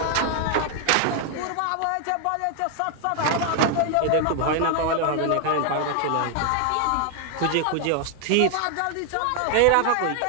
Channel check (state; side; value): different; both; correlation 0.00